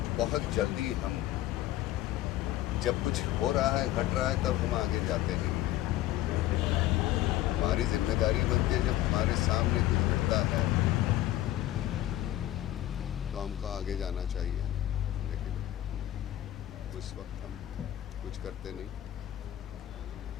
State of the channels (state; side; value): quieter; right; 14.2 dB